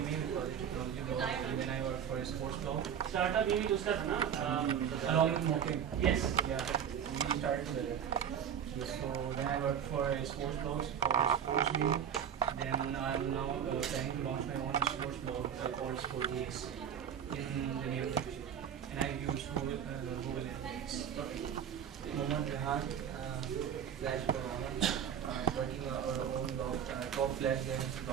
for technology blog, and then I work for a sports blog. Startup maybe to start, na? Along with Moking. Yes. Yeah, we started together. So then I work for a sports blog called Sports Mimi. Then I'm now planning to launch my own sports blog called SportGX in the near future. And I use Google Analytics. Mohammad Rehan, Flash Banana, working on our own blog, top Flash games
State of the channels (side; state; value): left; quieter; 8.5 dB